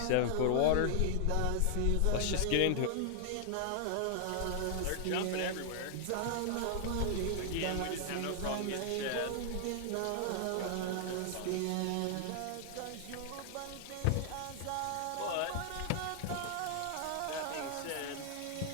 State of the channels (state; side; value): different; both; correlation 0.00